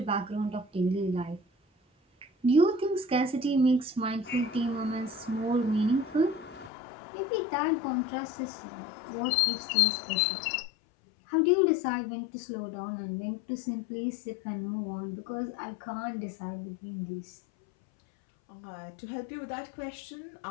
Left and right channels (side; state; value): right; drops out; at 6.7 s